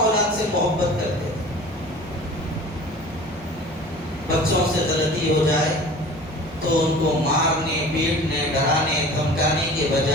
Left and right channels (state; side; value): normal; both; correlation 0.42